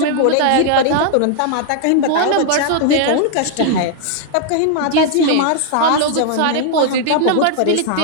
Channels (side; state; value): both; different; correlation 0.00